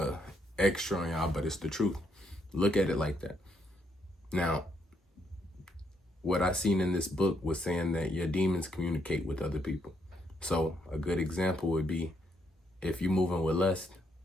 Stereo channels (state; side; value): normal; both; correlation 0.75